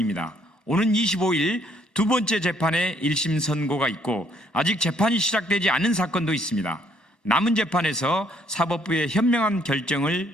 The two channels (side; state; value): right; late; 1.1 ms